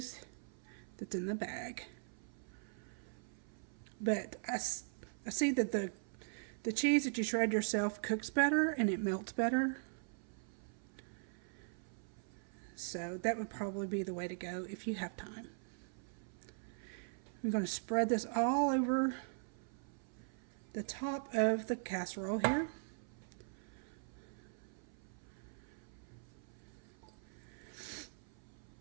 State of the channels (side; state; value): left; silent; 50 dB below the other